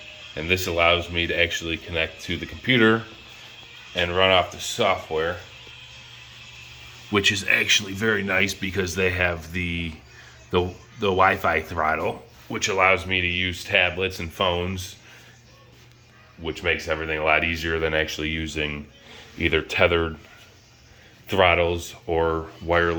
and this allows me to actually connect to the computer and run off the software, which is actually very nice because they have the Wi-Fi throttle, which allows me to use tablets and phones, which makes everything a lot easier than actually using either tethered throttles or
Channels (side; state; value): both; identical; correlation 1.00